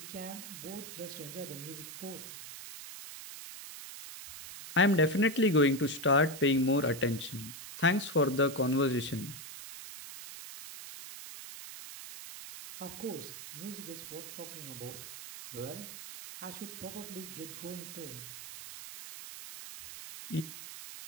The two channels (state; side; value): noise; right; hiss, 12 dB below the sound